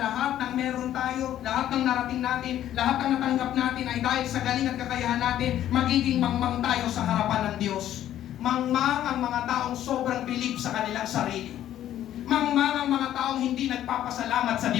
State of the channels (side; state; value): right; quieter; 11.9 dB